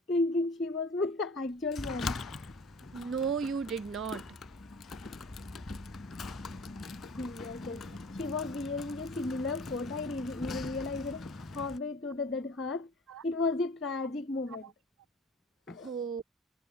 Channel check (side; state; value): both; normal; correlation 0.44